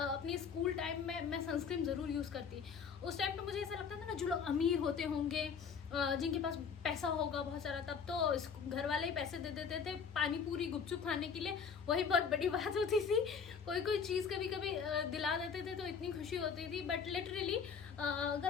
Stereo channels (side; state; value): right; quieter; 6.2 dB